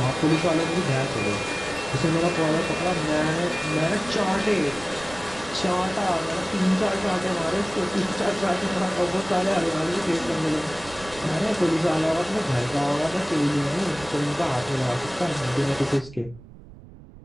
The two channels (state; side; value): noise; right; rumble, 19 dB below the sound